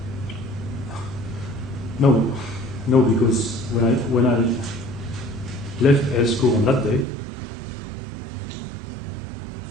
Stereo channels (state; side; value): drops out; left; at 7.1 s